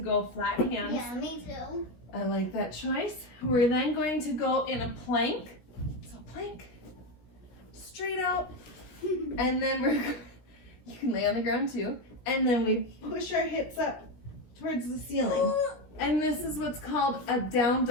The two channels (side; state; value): right; late; 16 ms